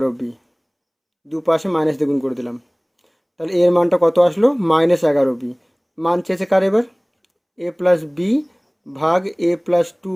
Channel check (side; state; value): both; identical; correlation 1.00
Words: দুপাশে মাইনাস দিয়ে গুণ করে দিলাম, তাহলে এর মানটা কত আসলো? Minus 11b। মান চেয়েছে কার? এবার এ প্লাস বি ভাগ এ প্লাস